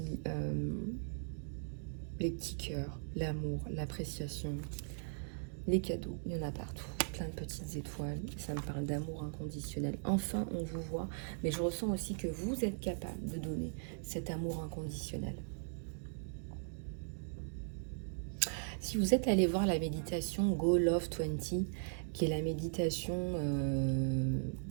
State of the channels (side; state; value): left; silent; digital silence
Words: les petits cœurs, l'amour, l'appréciation, les cadeaux, il y en a partout, plein de petites étoiles, ça me parle d'amour inconditionnel. Enfin, on vous voit, mais je ressens aussi que vous êtes capable de donner cet amour inconditionnel. Si vous êtes allé voir la méditation Go Love 20, qui est la méditation